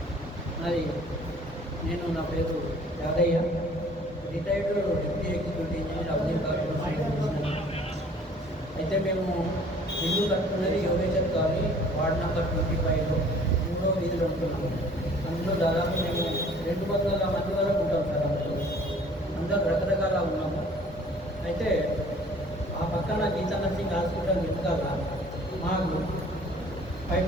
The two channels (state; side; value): normal; both; correlation 0.53